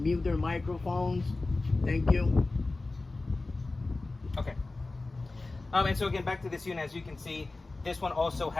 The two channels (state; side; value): quieter; right; 3.3 dB